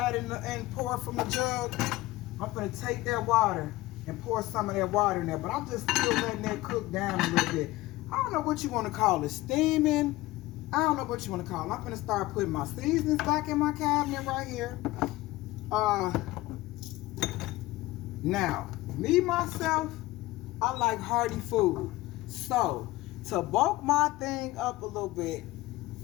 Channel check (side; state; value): right; quieter; 18.4 dB